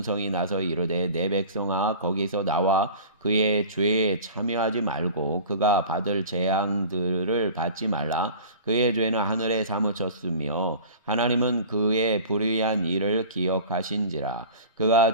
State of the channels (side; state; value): both; inverted; correlation -0.39